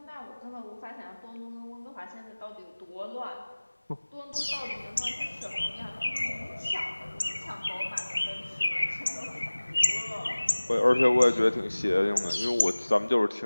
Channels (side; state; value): both; inverted; correlation -1.00